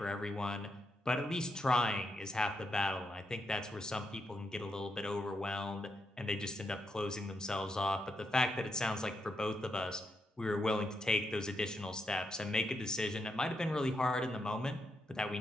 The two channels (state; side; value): normal; both; correlation 0.82